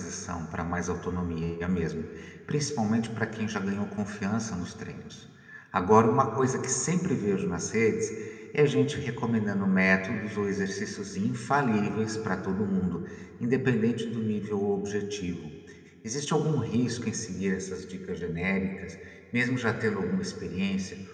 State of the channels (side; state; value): both; identical; correlation 1.00